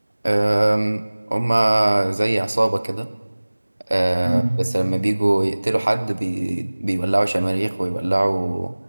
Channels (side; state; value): both; inverted; correlation -1.00